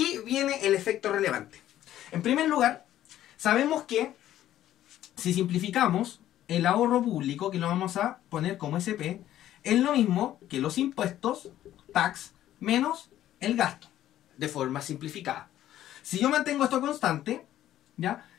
viene el efecto relevante. En primer lugar, sabemos que si simplificamos el ahorro público, que lo vamos a poner como SP, es lo mismo que los impuestos, tax, menos el gasto, de forma simplificada. Si yo mantengo esto constante, ¿ya?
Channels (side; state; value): right; quieter; 12.7 dB